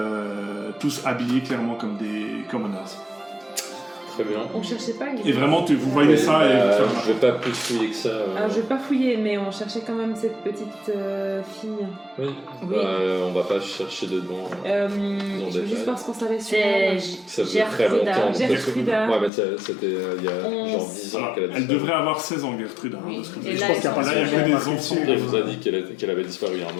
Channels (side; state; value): right; drops out; at 19.3 s